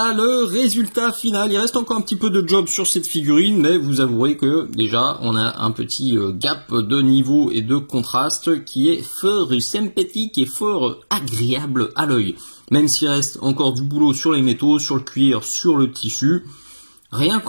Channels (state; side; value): inverted; both; correlation -1.00